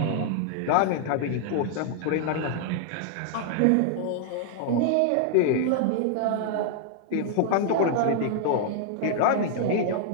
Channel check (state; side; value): different; both; correlation 0.00